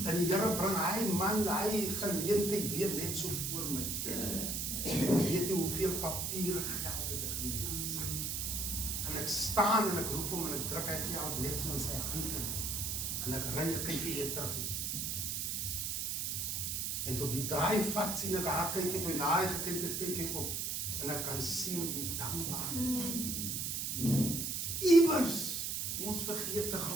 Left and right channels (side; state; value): right; noise; hiss, 1 dB below the sound